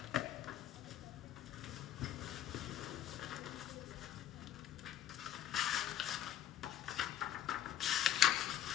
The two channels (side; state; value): right; quieter; 10.9 dB